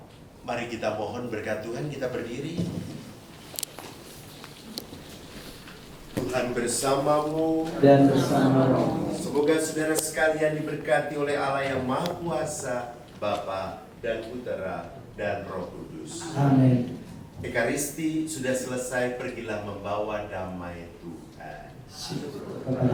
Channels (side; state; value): both; identical; correlation 1.00